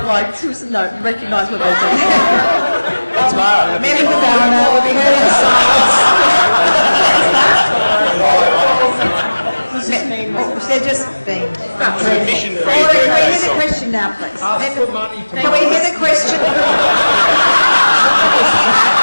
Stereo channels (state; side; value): inverted; both; correlation -1.00